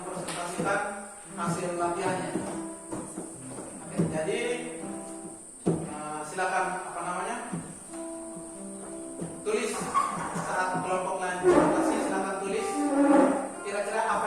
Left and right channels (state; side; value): identical; both; correlation 1.00